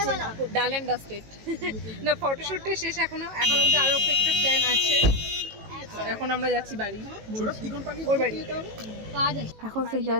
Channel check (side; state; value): left; late; 18 ms